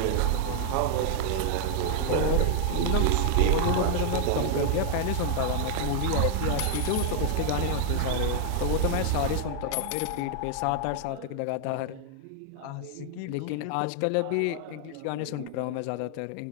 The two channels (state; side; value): different; both; correlation 0.00